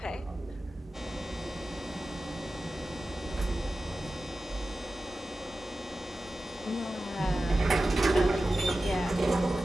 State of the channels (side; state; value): both; normal; correlation 0.94